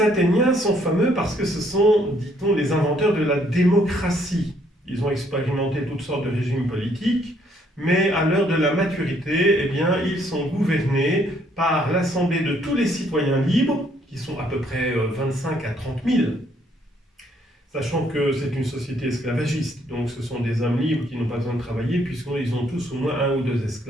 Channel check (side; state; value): both; normal; correlation 0.67